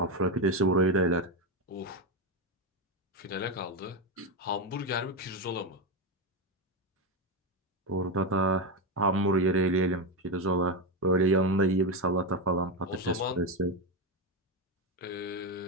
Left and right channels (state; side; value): normal; both; correlation 0.10